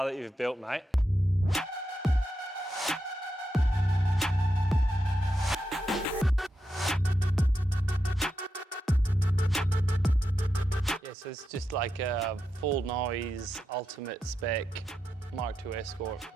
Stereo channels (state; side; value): normal; both; correlation 0.86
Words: that you've built, mate. So it's just like a full noise, ultimate spec Mark II Escort.